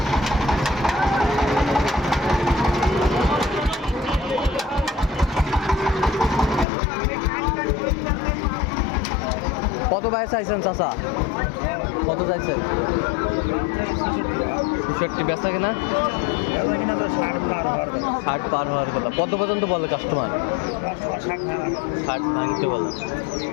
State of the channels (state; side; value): drops out; right; at 6.7 s